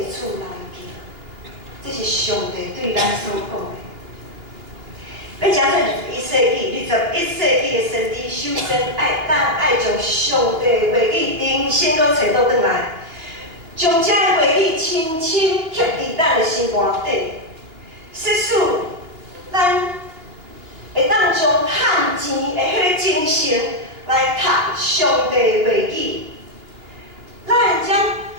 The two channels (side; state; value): left; late; 2.9 ms